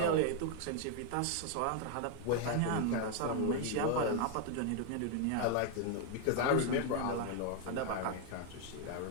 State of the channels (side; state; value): both; different; correlation 0.01